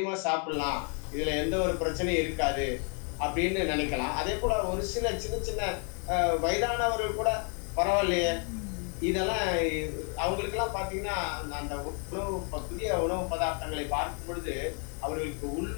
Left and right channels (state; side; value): quieter; right; 37.6 dB